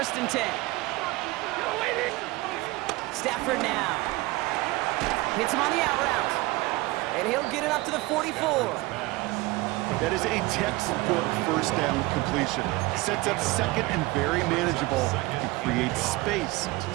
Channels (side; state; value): left; quieter; 21.1 dB